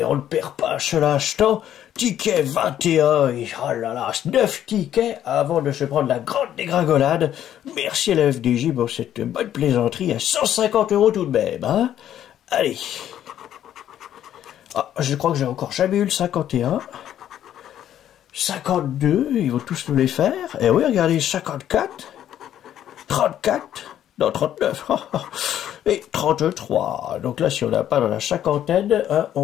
on ne perd pas ce l'instant. Ticket 21, et oh là là, 9 tickets avant de se prendre la grande dégringolade. Merci à la FDJ pour cette bonne plaisanterie à 150 € tout de même, hein. Allez. Ah, je crois que j'ai encore jamais eu le 51. 52, ils vont tous nous les faire. Et oui, regardez, 54, 34, non, 39, et 33. Donc là, si on n'a pas dans la cinquantaine, hein,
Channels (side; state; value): right; quieter; 11.0 dB